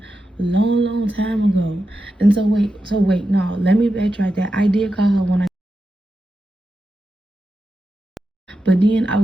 long time ago. And so wait, no, let me backtrack that. I did call her when I, but then I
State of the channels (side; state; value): both; normal; correlation 0.89